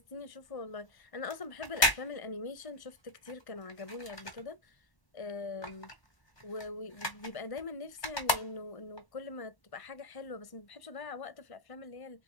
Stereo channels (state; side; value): late; right; 1.2 ms